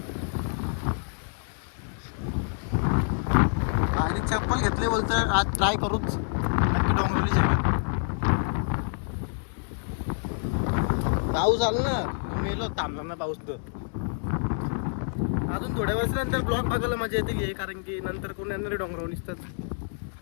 आणि चप्पल घेतले बोलतं आज ट्राय करूच नक्की डोंगरवली जगह. पाऊस आला ना मेलो थांबला ना पाऊस तर. अजून थोड्या वर्षानंतर ब्लॉग बघायला मजा येते कारण की नंतर कोण येणारे डोंगरावर निसतात.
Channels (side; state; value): right; silent; digital silence